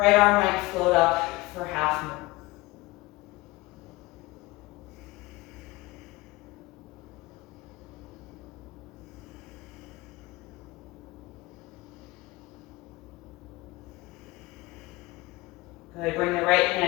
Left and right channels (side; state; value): right; quieter; 21.3 dB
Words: arm might float up for half moon. Good, bring the right